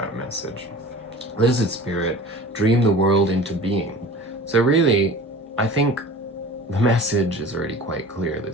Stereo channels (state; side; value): normal; both; correlation 0.40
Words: message. Lizard Spirit, dream the world into being. So really, I think the message is already quite clear